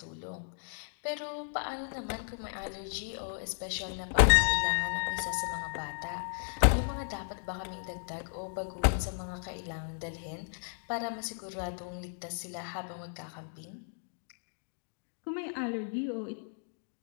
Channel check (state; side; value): silent; right; digital silence